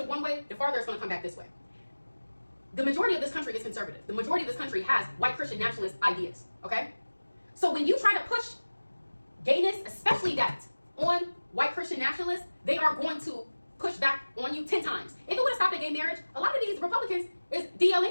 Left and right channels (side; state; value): both; inverted; correlation -1.00